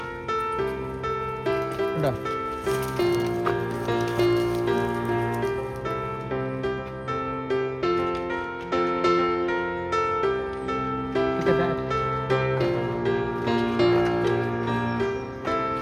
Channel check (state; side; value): identical; both; correlation 1.00